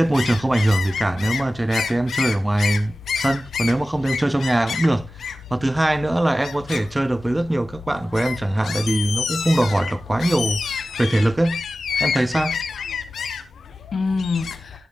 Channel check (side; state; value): both; normal; correlation 0.95